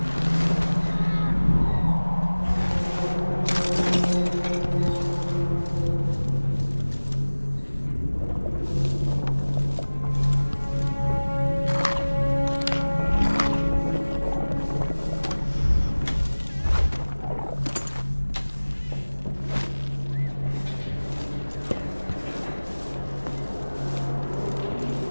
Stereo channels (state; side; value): inverted; both; correlation -1.00